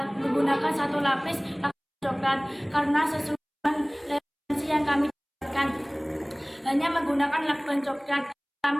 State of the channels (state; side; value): identical; both; correlation 1.00